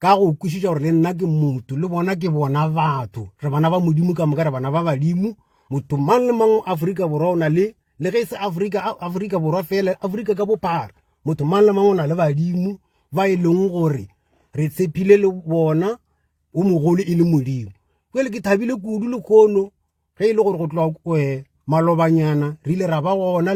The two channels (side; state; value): both; identical; correlation 1.00